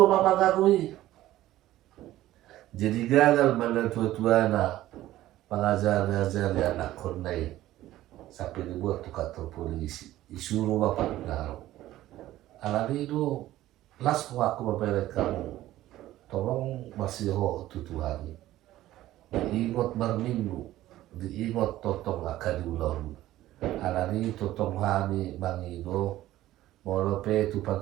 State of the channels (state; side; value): quieter; left; 14.9 dB